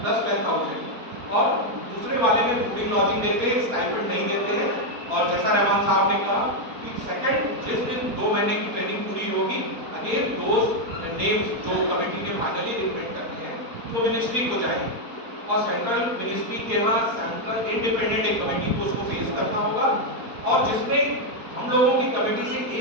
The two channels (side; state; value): left; late; 4.2 ms